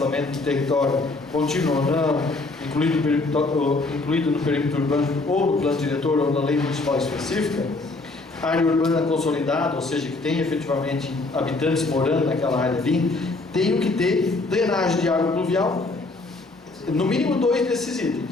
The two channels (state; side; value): quieter; right; 3.3 dB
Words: de território contínuo ou não, incluído no perímetro urbano ou no plano diretor ou na lei municipal específica, área urbana consolidada, ou seja, que tem efetivamente habitantes morando naquela área ali, tem que ter drenagem de água pluvial, no mínimo 2 desses